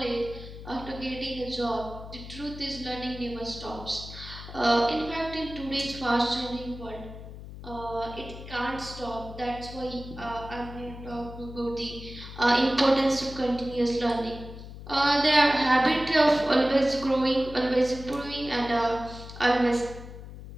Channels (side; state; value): left; noise; hum, 13 dB below the sound